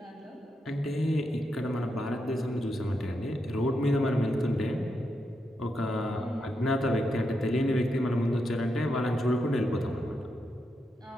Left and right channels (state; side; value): normal; both; correlation 0.84